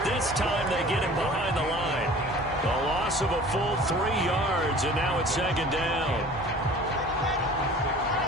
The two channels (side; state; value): both; normal; correlation 0.45